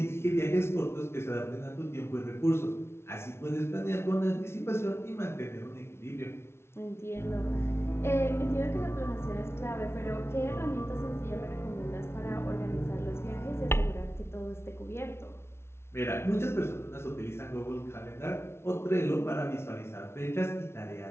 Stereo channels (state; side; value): late; right; 0.12 ms